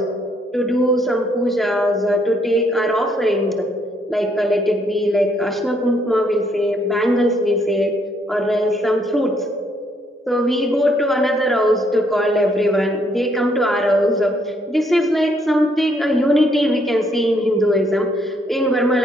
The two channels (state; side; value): normal; both; correlation 0.70